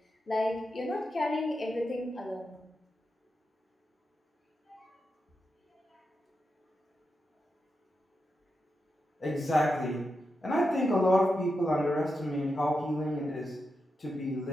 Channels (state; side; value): normal; both; correlation 0.88